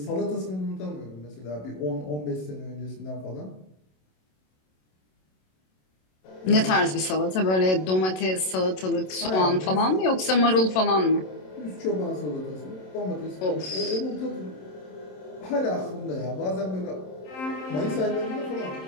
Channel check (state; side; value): late; right; 27 ms